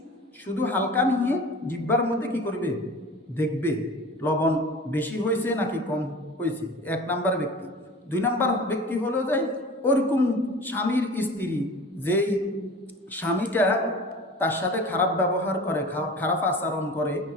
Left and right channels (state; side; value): normal; both; correlation 0.39